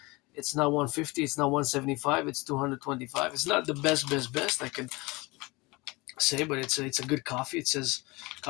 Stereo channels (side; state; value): right; quieter; 24.2 dB